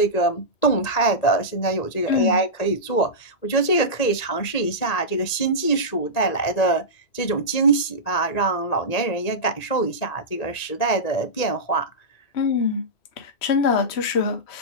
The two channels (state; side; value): late; right; 1.9 ms